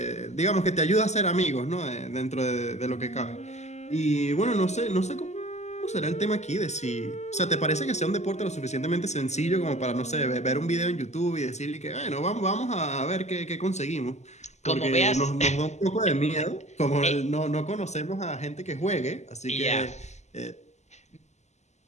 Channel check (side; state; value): right; late; 0.33 ms